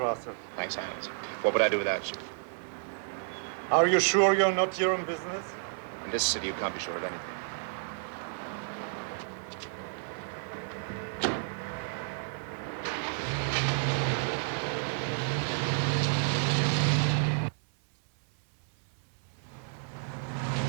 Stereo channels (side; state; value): left; silent; 57 dB below the other